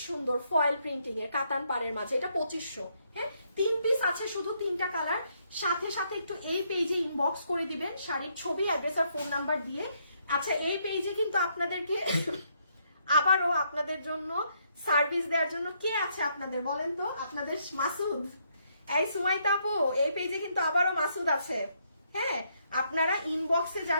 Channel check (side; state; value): both; inverted; correlation -0.74